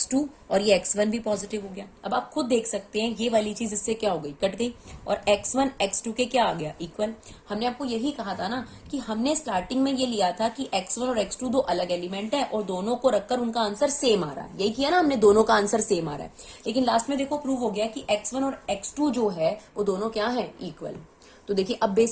और ये x1 भी पॉजिटिव हो गया। अब आप खुद देख सकते हैं ये वाली चीज इससे क्या हो गई, कट गई, और x1 x2 के क्या आ गया, इक्वल। हमने आपको यही कहा था ना कि हमने स्टार्टिंग में ये लिया था कि x1 और x2 दो अलग एलिमेंट है और दोनों को रखकर उनका आंसर सेम आ रहा है, यही किया ना हमने, दोनों का आंसर सेम आ रहा है। लेकिन लास्ट में देखो प्रूव हो गया कि x1 और x2 जो है वो दोनों क्या है, इक्वल। तो देखिए अब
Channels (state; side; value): identical; both; correlation 1.00